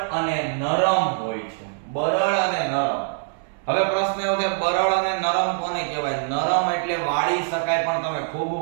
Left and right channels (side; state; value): left; silent; 63 dB below the other